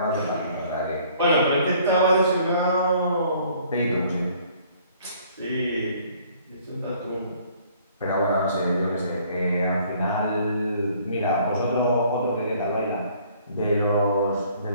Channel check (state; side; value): inverted; both; correlation -0.58